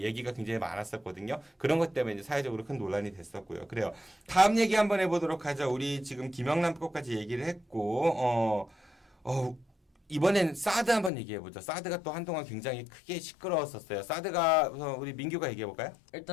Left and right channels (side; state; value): right; drops out; at 11.1 s